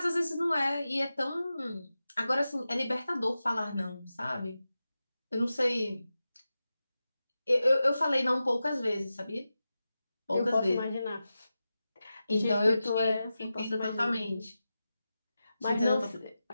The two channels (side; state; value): both; inverted; correlation -0.93